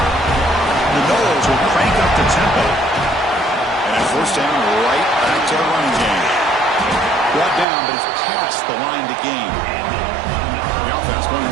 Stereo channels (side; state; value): left; drops out; at 7.7 s